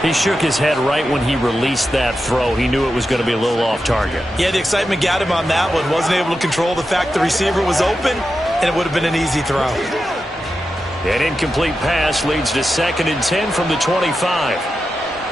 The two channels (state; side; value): normal; both; correlation 0.90